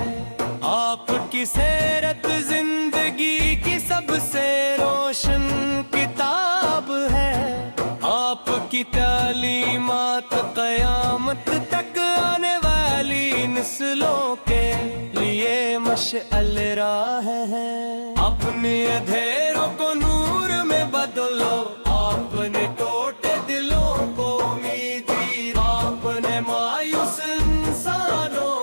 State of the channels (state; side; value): inverted; both; correlation -1.00